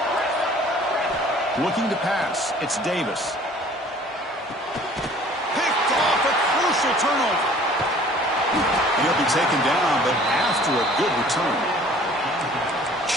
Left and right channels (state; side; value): normal; both; correlation 0.51